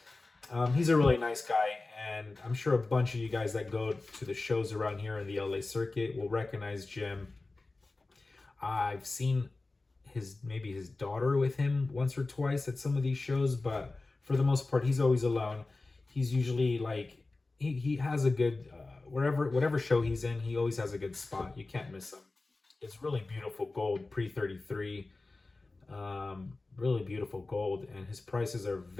He's a really nice guy, and I'm sure a bunch of you guys that go to the shows around here in the LA circuit will recognize Jim. I've seen maybe his daughter with him once or twice at some of these shows, but for the most part, he's always alone. He's usually like he has a good whatever show he's in, he always has a good spot. You can't miss him. It's really beautiful gold pre 33, really beautiful gold, and his prices are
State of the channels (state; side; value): quieter; right; 3.3 dB